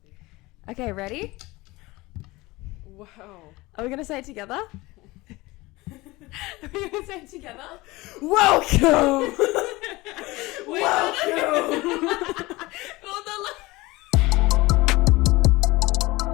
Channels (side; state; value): right; quieter; 21.3 dB